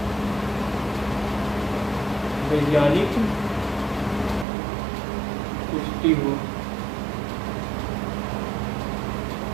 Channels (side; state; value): left; drops out; at 4.5 s